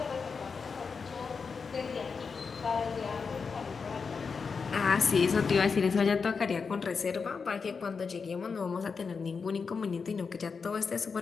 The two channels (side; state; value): right; quieter; 5.3 dB